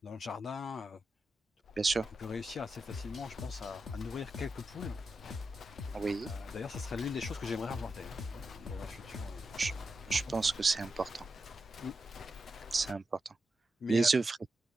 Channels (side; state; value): both; normal; correlation 0.88